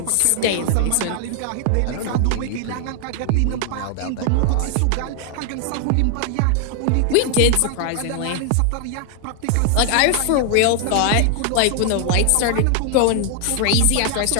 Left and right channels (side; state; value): both; different; correlation 0.00